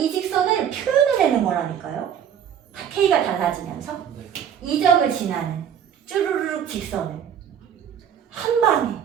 직선을 표현을 내는 거라니까요. K가 달라지면서 네. 이 점을 지나는 쭈루루룩 직선을 한 방에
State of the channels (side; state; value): left; quieter; 8.7 dB